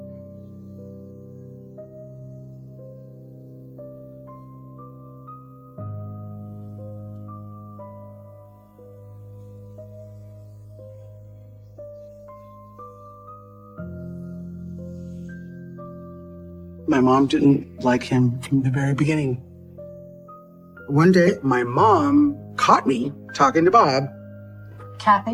My mom didn't like him from the very beginning. One day, my mom caught me talking to Bob,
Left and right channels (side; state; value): both; identical; correlation 1.00